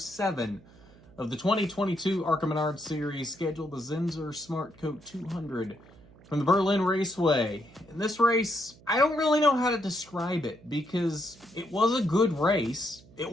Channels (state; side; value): noise; right; hum, 24 dB below the sound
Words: of the 2022 ARCA Menards Series, scheduled the Zinsser SmartCoat 200 from the Berlin Raceway. In this race, I don't really know how to describe it because it was a good race. It